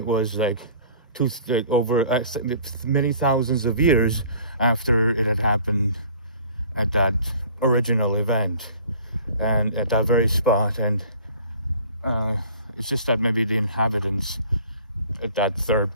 was like over many thousands of years after it had happened at that original event. and at that very spot. And it's just that maybe the inhabitants at that third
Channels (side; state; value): both; inverted; correlation -0.49